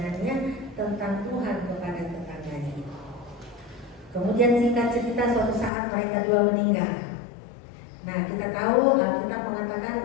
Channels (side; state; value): right; drops out; at 5.7 s